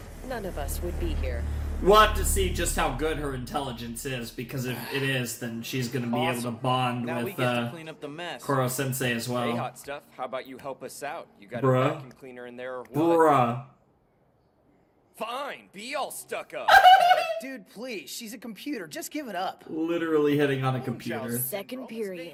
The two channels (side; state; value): both; identical; correlation 1.00